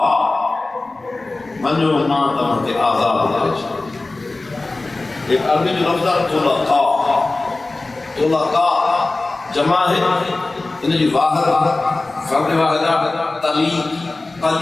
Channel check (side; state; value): right; quieter; 3.2 dB